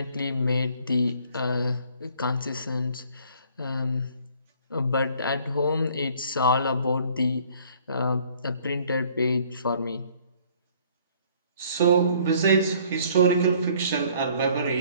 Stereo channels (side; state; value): both; inverted; correlation -0.58